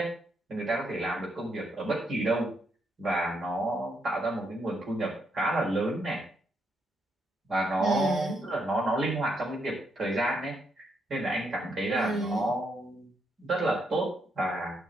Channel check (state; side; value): normal; both; correlation 0.77